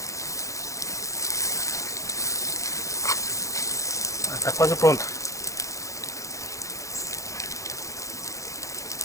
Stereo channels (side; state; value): right; late; 0.15 ms